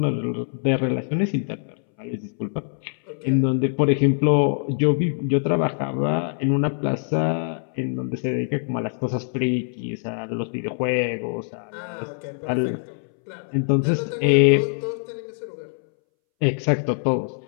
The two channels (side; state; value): right; silent; 63 dB below the other